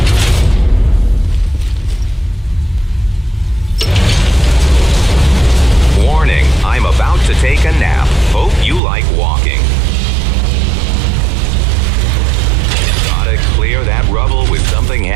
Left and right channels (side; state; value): left; drops out; at 8.8 s